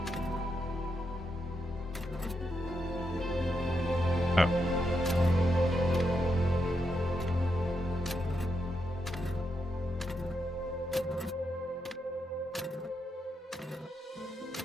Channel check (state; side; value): normal; both; correlation 0.83